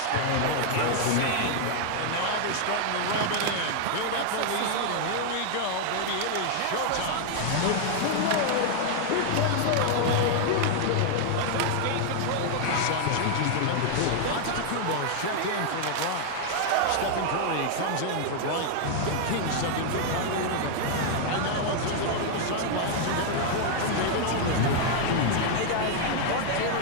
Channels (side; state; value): both; different; correlation 0.00